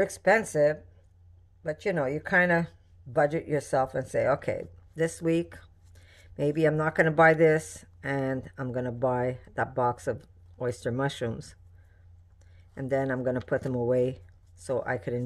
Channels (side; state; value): both; identical; correlation 1.00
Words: expensive, but you know, you kind of budget yourself and say, okay, this week, maybe I'm not going to buy this, and I'm going to buy that box of oyster mushrooms. And then I'm going to put them away so I could